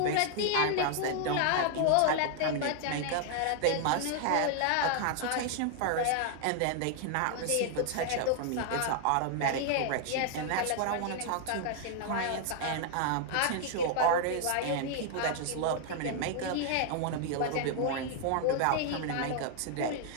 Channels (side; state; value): both; different; correlation 0.00